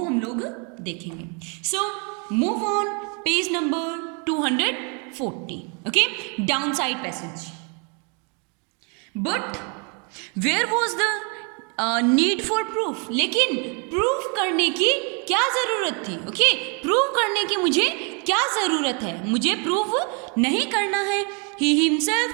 हम लोग देखेंगे। So move on page number 240। Okay, down side passage. But where was the need for proof? लेकिन प्रूफ करने की क्या ज़रूरत थी? ओके, प्रूव करने की मुझे क्या ज़रूरत है? मुझे प्रूव नहीं करना है। He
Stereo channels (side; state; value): left; quieter; 35.4 dB